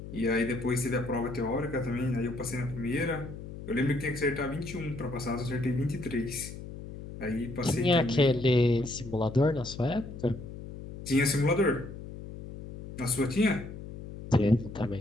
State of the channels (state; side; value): noise; left; hum, 12 dB below the sound